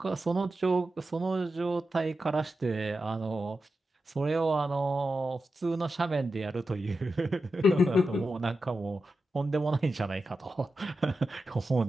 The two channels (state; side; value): normal; both; correlation 0.91